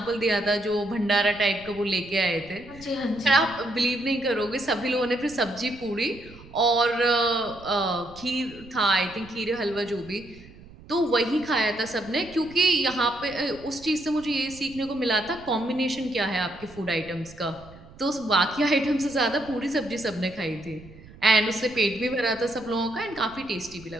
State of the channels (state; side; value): noise; right; rumble, 20 dB below the sound